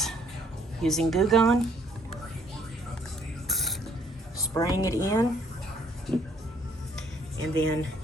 Using Goo Gone, spraying it in, and then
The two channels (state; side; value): normal; both; correlation 0.64